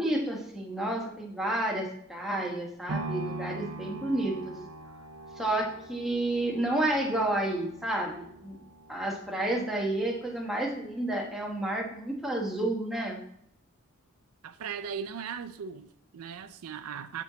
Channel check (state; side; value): normal; both; correlation 0.61